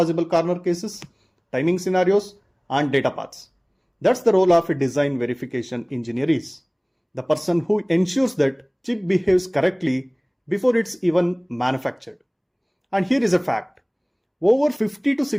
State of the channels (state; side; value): identical; both; correlation 1.00